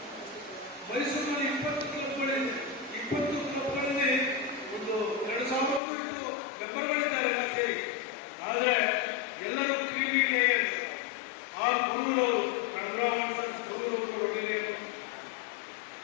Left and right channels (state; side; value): drops out; right; at 5.8 s